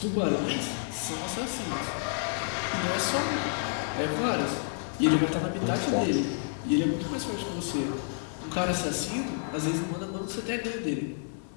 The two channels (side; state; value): right; silent; 57 dB below the other